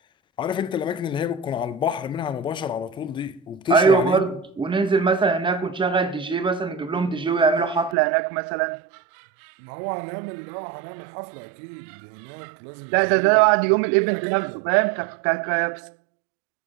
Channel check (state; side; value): drops out; left; at 8.0 s